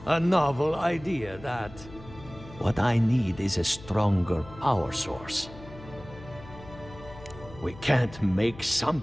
A novel idea, that. What I need is a stronger power source. We can't make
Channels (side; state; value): left; noise; hum, 18 dB below the sound